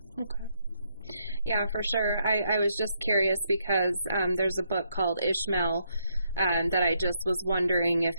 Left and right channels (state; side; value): inverted; both; correlation -0.76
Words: Okay. Yeah, for sure. I was just curious because there's a book called Ishmael that I just was wondering if